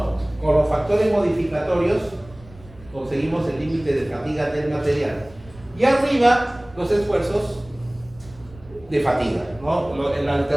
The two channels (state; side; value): noise; right; rumble, 23 dB below the sound